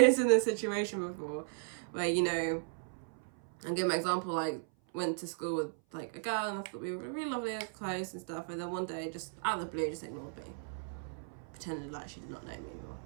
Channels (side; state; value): left; silent; 54 dB below the other